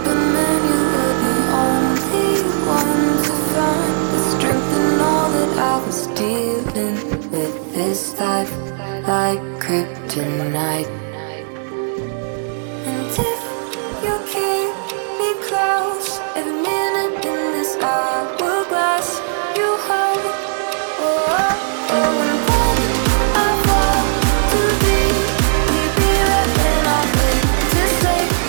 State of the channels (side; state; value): left; silent; digital silence